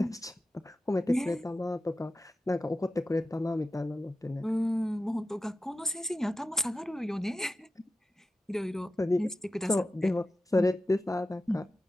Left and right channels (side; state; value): both; normal; correlation 0.92